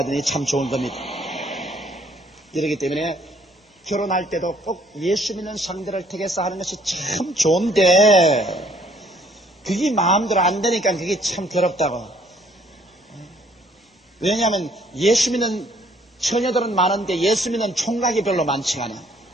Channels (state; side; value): normal; both; correlation 0.62